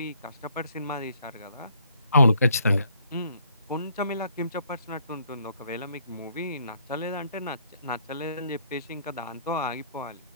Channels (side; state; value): both; inverted; correlation -0.67